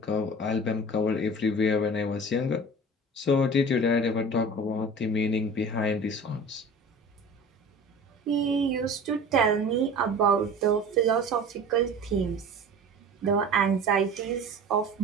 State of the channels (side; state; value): both; normal; correlation 0.39